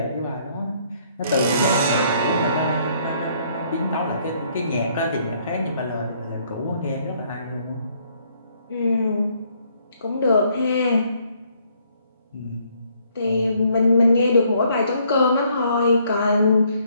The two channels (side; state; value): both; inverted; correlation -0.67